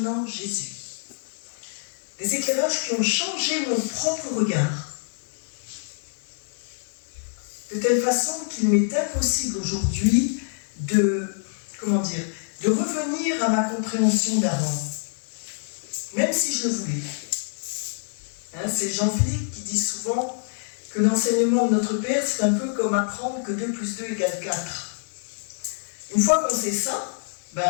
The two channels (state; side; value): silent; right; digital silence